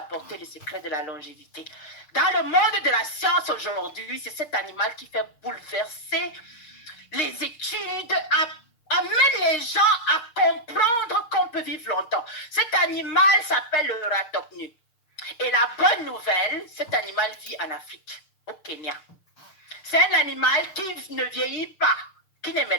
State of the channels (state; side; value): late; right; 6.6 ms